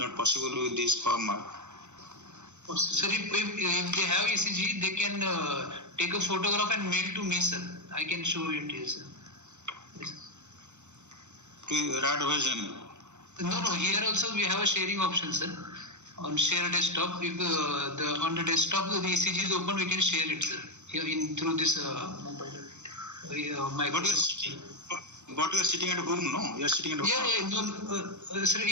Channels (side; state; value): left; late; 0.83 ms